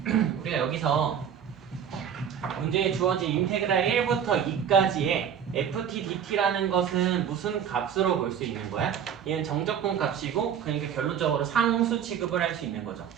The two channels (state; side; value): quieter; left; 8.3 dB